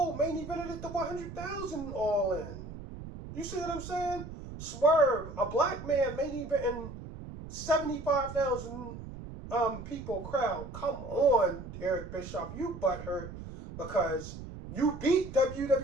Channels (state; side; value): noise; right; rumble, 11 dB below the sound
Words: main evented it to 100,000 all in. You see what I'm saying? Swerve, a black man main eventing 75,000 people crowd. Come on, Eric Bischoff, you butthurt because you beat